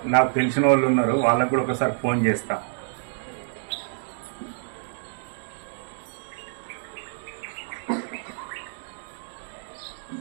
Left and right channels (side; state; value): left; silent; digital silence